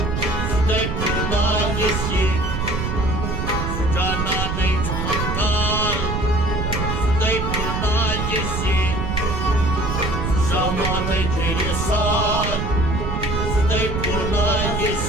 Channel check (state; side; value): noise; right; rumble, 2 dB below the sound